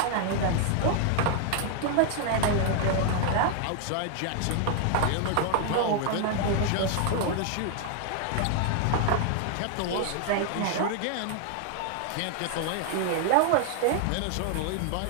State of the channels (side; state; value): both; different; correlation 0.00